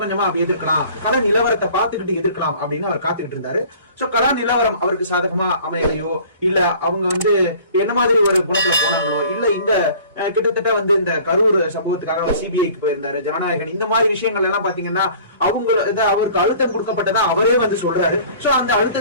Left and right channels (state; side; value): inverted; both; correlation -0.49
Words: கொஞ்சமா அப்படி எதிர்க்கலாம், கள நிலவரத்தை பார்த்துக்கிட்டு எதிர்க்கலாம் அப்படின்னு அவர் காத்துக்கிட்டு இருந்தாரு. சோ கள நிலவரம் அவருக்கு சாதகமா அமையலையோ, இல்ல அவங்க என்ன மாதிரி ஒரு குணத்துல போனாங்களோ, இல்ல இந்த கிட்டத்தட்ட இந்த கரூர் சம்பவத்துக்காக சிபிஐக்கு போயிருந்தாரு ஜனநாயகன், இந்த மாதிரி விஷயங்கள் எல்லாம் பாத்தீங்கன்னா அவருக்கு அழுத்தம் கொடுக்கப்பட்டதா அவரே சொல்றாரு. சோ அந்த